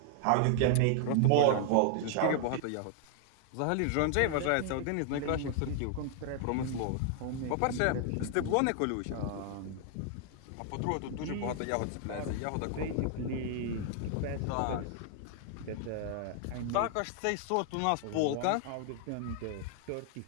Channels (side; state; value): both; different; correlation 0.00